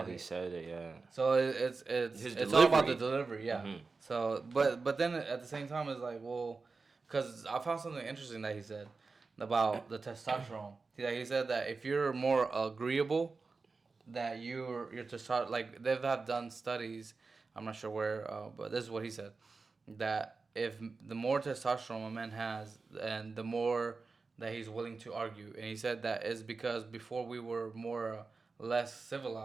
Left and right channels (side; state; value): left; quieter; 4.2 dB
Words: he said it, yeah. So it's all about the delivery, yeah. Mm-hmm. So but then at the same time, it's like, well, because I found something interesting that he said about the testosterone. He said that if you're more agreeable, that you're testosterone, like they have done studies. I'm not sure where, but this is what he said, that if the more testosterone a man has, and the more that he's willing to argue, and he said that is because before we were more less